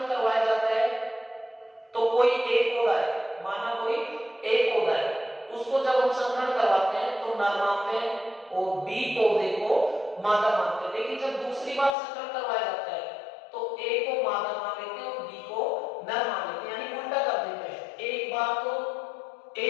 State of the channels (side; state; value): right; drops out; at 12.0 s